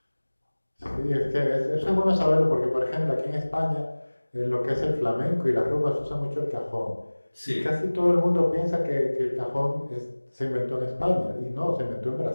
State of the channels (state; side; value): inverted; both; correlation -1.00